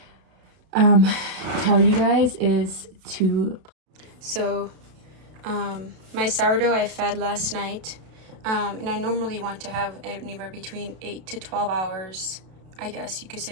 tell you guys is to... So my sourdough I fed last night, and I normally want to have anywhere between 8 to 12 hours, I guess you could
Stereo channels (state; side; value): late; left; 32 ms